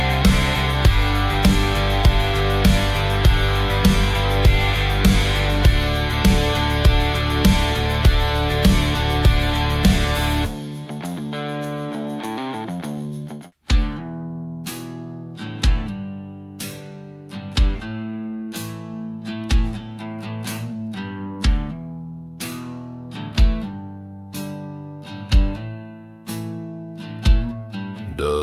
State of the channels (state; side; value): identical; both; correlation 1.00